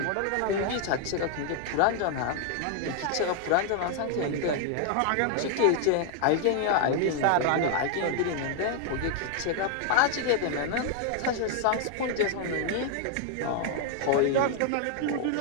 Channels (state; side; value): different; both; correlation 0.00